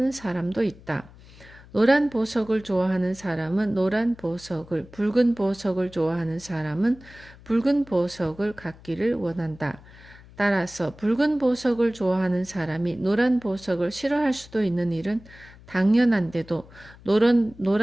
사람도 있다. 노란 보석을 좋아하는 사람은 노란 보석을, 붉은 보석을 좋아하는 사람은 붉은 보석을 갖기를 원한다. 따라서 붉은 보석을 좋아하는 사람이 노란 보석을 싫어할 수도 있는 일은 당연한데도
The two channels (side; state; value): left; noise; hum, 22 dB below the sound